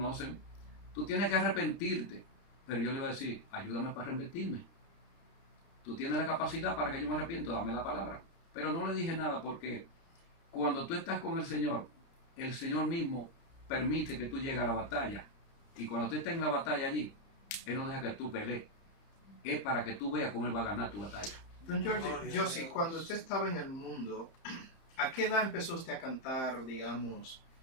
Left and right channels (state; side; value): late; right; 30 ms